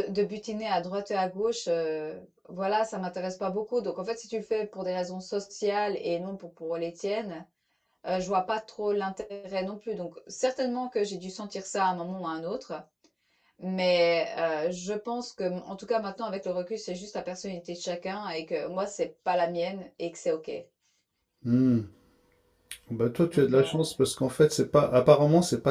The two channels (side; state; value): both; identical; correlation 1.00